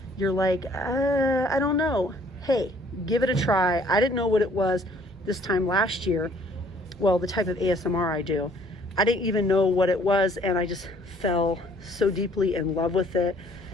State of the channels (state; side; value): normal; both; correlation 0.59